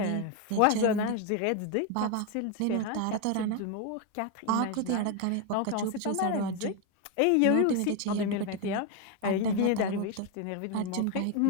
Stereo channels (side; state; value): both; different; correlation 0.01